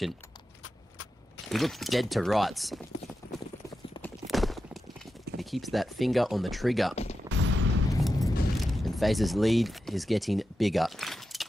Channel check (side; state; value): both; normal; correlation 0.90